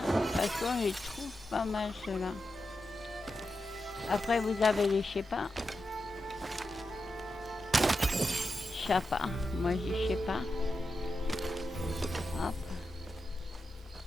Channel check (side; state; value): both; normal; correlation 0.89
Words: parce qu'on les trouve pas mal ceux-là. Après vous avez les Shepa. Chapa, moi je dis Shepa. Hop.